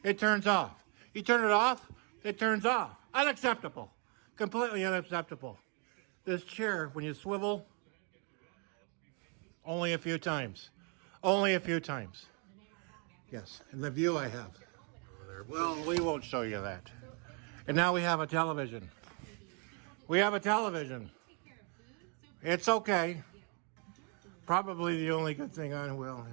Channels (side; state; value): left; quieter; 37.0 dB